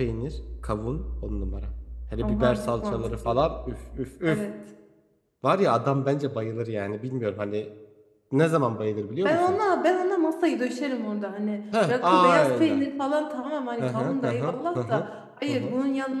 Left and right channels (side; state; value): both; identical; correlation 1.00